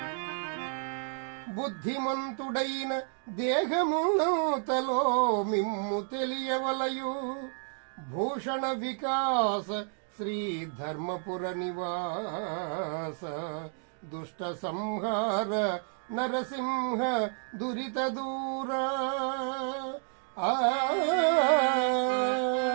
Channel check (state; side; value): silent; left; 57 dB below the other